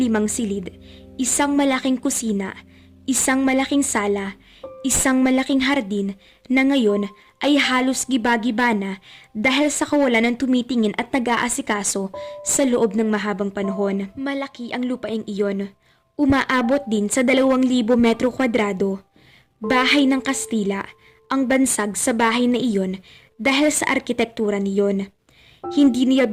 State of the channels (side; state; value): both; identical; correlation 1.00